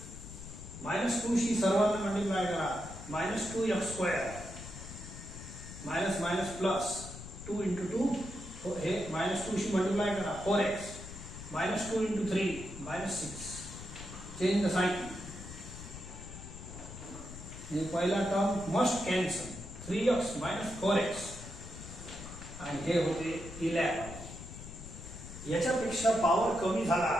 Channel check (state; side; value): noise; left; rumble, 12 dB below the sound